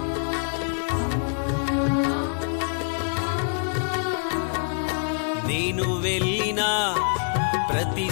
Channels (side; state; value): right; silent; 62 dB below the other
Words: నేను వెళ్ళిన ప్రతి